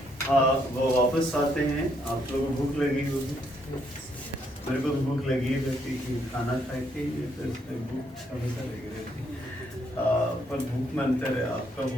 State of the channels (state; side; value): normal; both; correlation 0.72